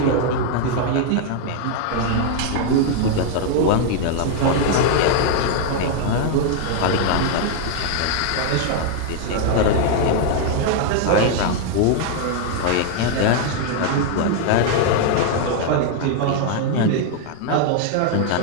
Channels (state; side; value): different; both; correlation 0.00